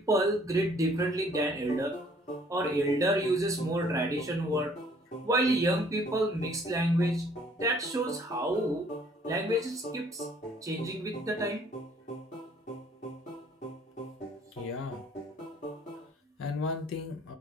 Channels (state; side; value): normal; both; correlation 0.59